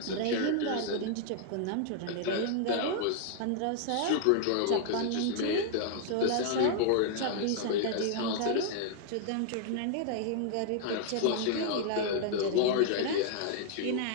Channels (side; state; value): both; different; correlation -0.01